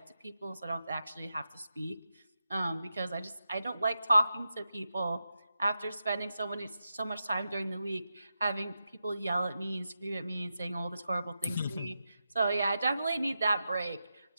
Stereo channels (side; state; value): both; inverted; correlation -0.89